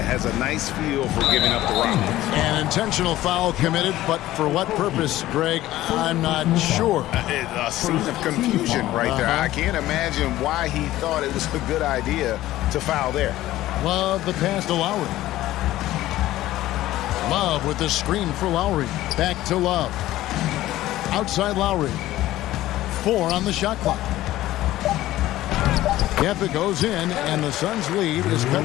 has a nice feel for giving up the rock. An intentional foul committed, but for what purpose, Greg, I'm not sure. A scene of confusion right there. I can't imagine why he thought it was a good idea to foul there. Love the pass to Lowry. Love with the screen for Lowry. Back to Love. Outside Lowry. 4 on the shot clock. Yep, it goes in, and the Suns' lead is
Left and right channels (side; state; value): right; quieter; 15.3 dB